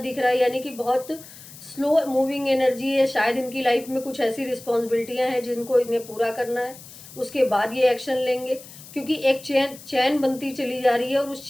रहा है, यानी कि बहुत स्लो मूविंग एनर्जी है। शायद इनकी लाइफ में कुछ ऐसी रिस्पॉन्सिबिलिटियाँ हैं जिनको इन्हें पूरा करना है, उसके बाद ये एक्शन लेंगे, क्योंकि एक चैन चैन बनती चली जा रही है और उस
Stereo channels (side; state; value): left; noise; hiss, 18 dB below the sound